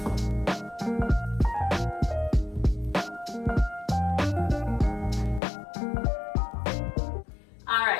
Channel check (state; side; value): drops out; right; at 5.4 s